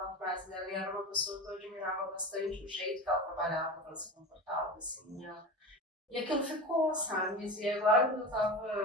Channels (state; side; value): normal; both; correlation 0.29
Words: frase dela, e era uma pessoa que eu admirava bastante o jeito que ela trabalhava, que ela se comportava, assim, e aquilo ficou, sabe, e agora que eu tava